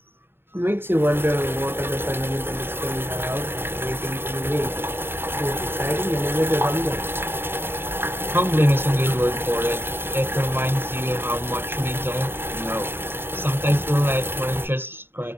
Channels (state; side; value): late; left; 0.11 ms